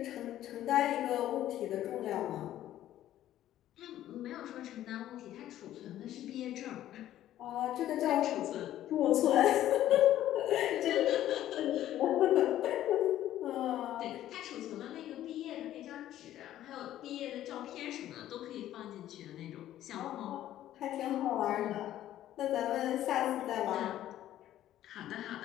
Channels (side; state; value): right; quieter; 12.8 dB